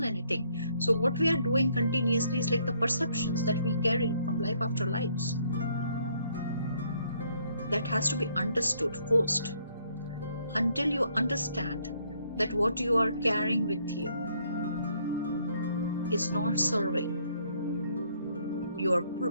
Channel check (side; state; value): both; inverted; correlation -0.68